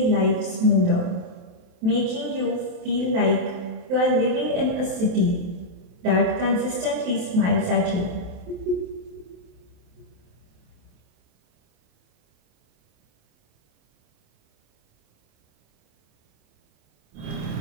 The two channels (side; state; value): left; late; 27 ms